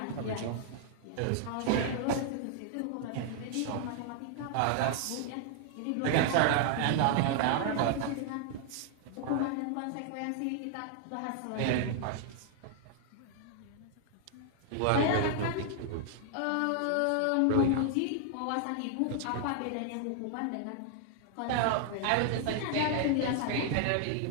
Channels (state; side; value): different; both; correlation 0.00